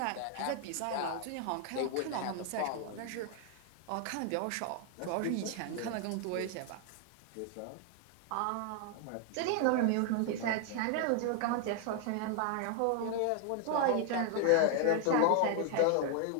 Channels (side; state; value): both; different; correlation 0.00